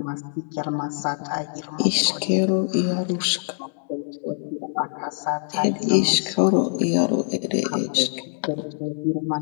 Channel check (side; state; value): right; silent; digital silence